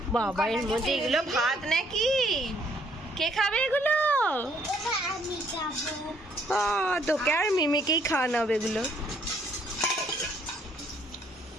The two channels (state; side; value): normal; both; correlation 0.66